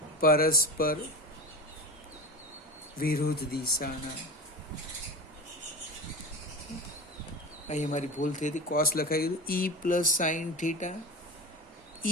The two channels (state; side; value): normal; both; correlation 0.28